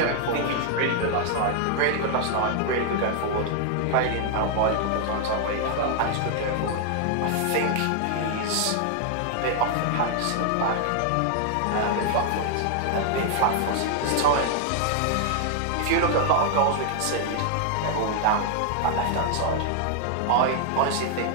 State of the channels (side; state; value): both; different; correlation 0.00